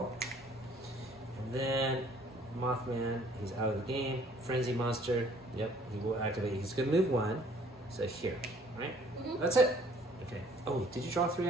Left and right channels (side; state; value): both; normal; correlation 0.58